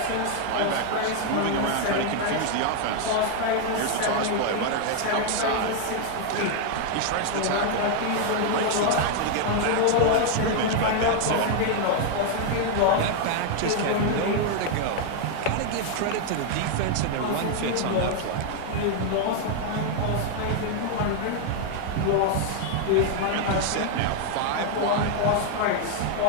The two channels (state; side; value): different; both; correlation 0.00